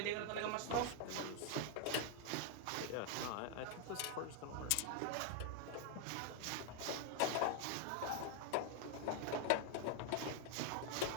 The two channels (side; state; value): both; different; correlation 0.00